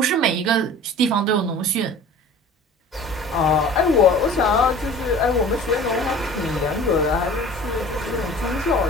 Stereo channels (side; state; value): both; normal; correlation 0.43